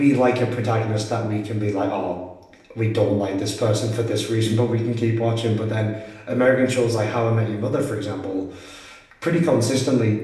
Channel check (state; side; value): identical; both; correlation 1.00